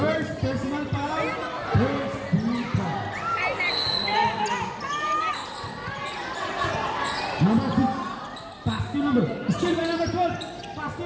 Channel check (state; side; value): identical; both; correlation 1.00